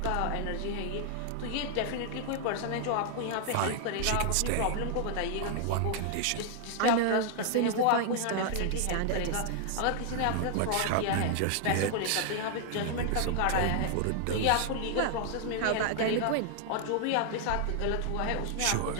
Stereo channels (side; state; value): both; different; correlation 0.00